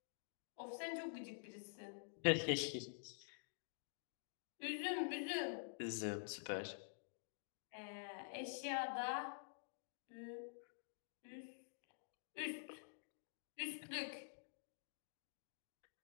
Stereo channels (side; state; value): right; silent; digital silence